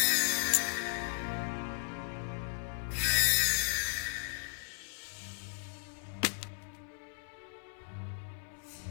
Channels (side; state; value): right; silent; 54 dB below the other